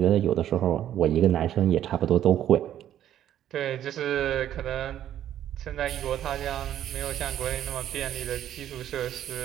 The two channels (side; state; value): left; quieter; 11.3 dB